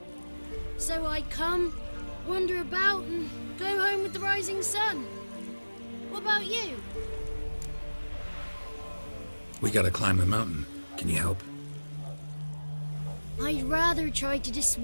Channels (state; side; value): inverted; both; correlation -1.00